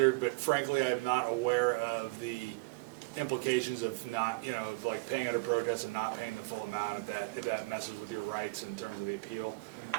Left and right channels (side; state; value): left; quieter; 26.3 dB